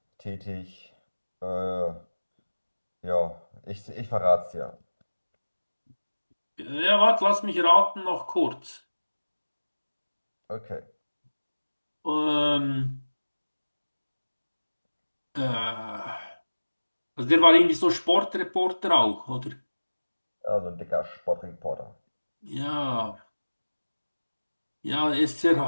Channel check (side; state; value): both; inverted; correlation -1.00